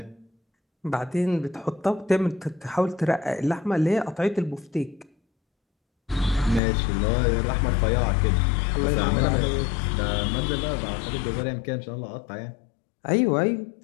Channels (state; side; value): drops out; right; at 6.6 s